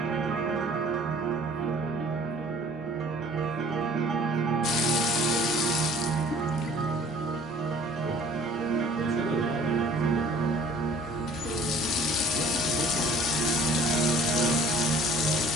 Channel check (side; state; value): both; normal; correlation 0.52